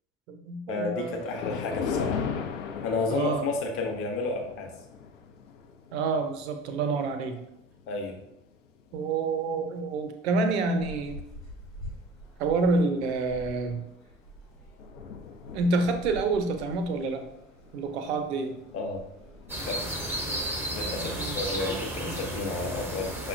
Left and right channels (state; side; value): normal; both; correlation 0.37